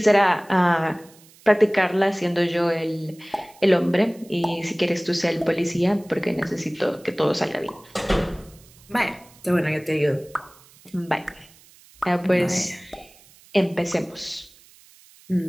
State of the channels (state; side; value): noise; right; hiss, 26 dB below the sound